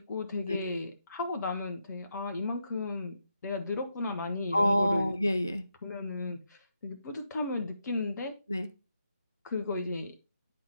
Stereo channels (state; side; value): inverted; both; correlation -0.83